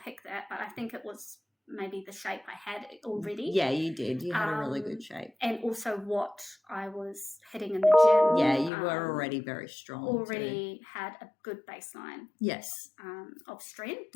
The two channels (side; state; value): right; drops out; at 8.7 s